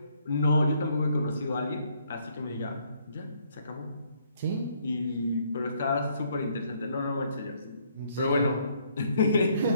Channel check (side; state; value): both; inverted; correlation -0.68